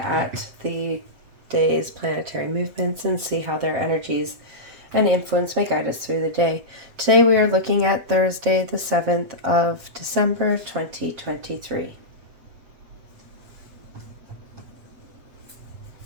the day's planetary movements and see how their energies and influence may guide us through the day. Today we are looking at Thursday, the 7th of December, 2023.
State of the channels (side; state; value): left; late; 7.5 ms